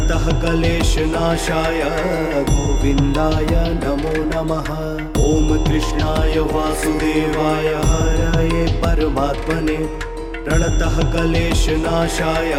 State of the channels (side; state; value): both; identical; correlation 1.00